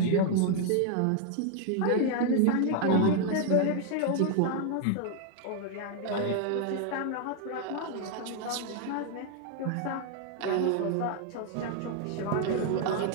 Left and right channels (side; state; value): both; different; correlation 0.00